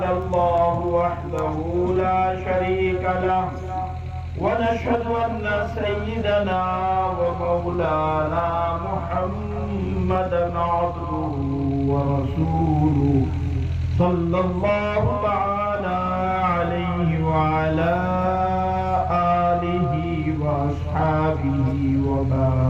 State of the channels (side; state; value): both; identical; correlation 1.00